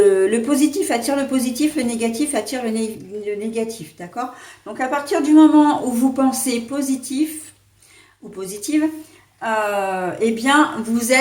positif attire le positif, le négatif attire le négatif, d'accord? Donc à partir du moment où vous pensez positif ou positive, eh bien, vous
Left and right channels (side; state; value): both; identical; correlation 1.00